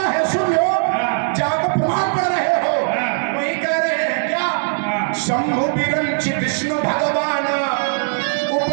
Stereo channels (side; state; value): left; silent; digital silence